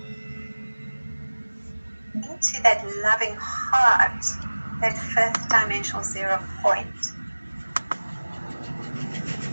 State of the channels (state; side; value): inverted; both; correlation -1.00